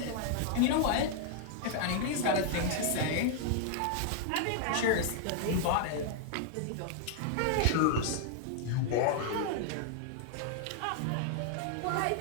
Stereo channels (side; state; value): both; different; correlation 0.00